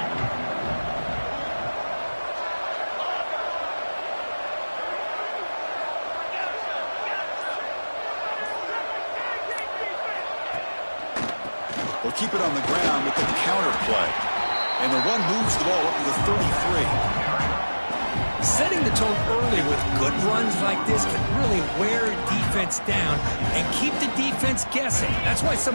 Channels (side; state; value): both; inverted; correlation -1.00